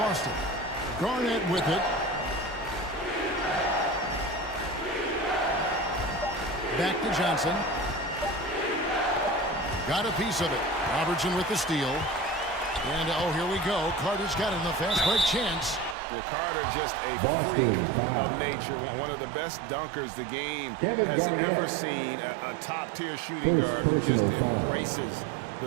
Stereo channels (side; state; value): left; drops out; at 16.0 s